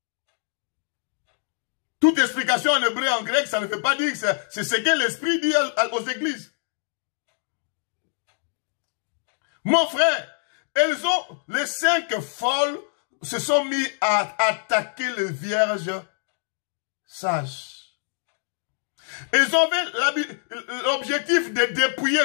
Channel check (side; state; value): right; silent; digital silence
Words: Toute explication en hébreu et en grec, ça ne veut pas dire que c'est ce que l'Esprit dit aux églises. Mon frère, les 5 folles se sont mis à attaquer les vierges sages. Ils avaient l'objectif de dépouiller